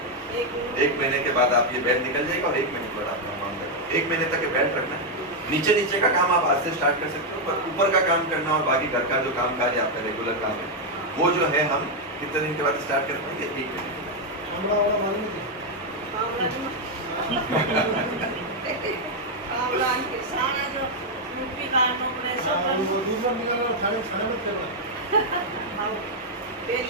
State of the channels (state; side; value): normal; both; correlation 0.01